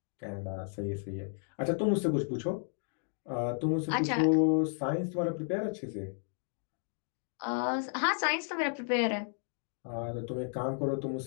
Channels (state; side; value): silent; right; 56 dB below the other